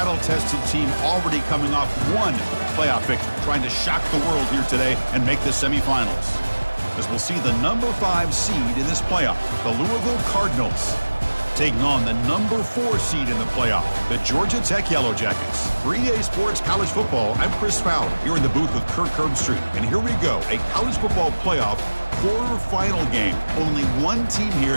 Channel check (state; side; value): inverted; both; correlation -1.00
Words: team already coming off one playoff victory, trying to shock the world here today and make the semifinals. As we'll see the number 5 seed in this playoff, the Louisville Cardinals, taking on the number 4 seed in the playoff, the Georgia Tech Yellow Jackets. 3A Sports College Football, I'm Chris Fowler, here in the booth with Kirk Herbstreit. And here we go, a college football playoff quarterfinal game. Only one team